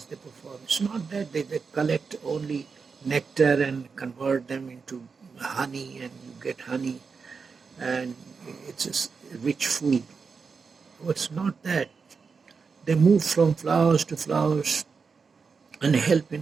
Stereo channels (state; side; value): quieter; left; 5.2 dB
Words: they perform. It's not that they collect only nectar and convert them into honey and you get honey and it's a rich food. It's not that. They move from flowers to flowers and help